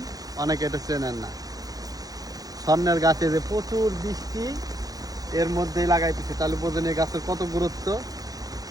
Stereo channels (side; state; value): left; late; 0.18 ms